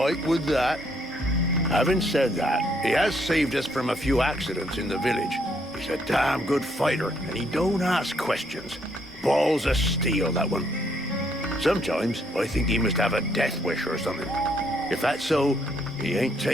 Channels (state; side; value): normal; both; correlation 0.71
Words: with that. Having said that, he has saved us from a few accidents in the village. He's a damn good fighter, and he don't ask questions. Balls of steel, that one. Sometimes I think he must have a death wish or something. If that's so, he ain't